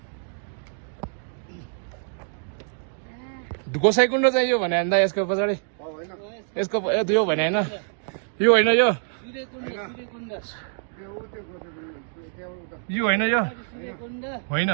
गोसाइकुण्ड चाहिँ यो भने अन्दा यसको पछाडि यसको यो भने हैन, यो होइन, यो यो होइन, यो होइन।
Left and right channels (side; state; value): left; silent; digital silence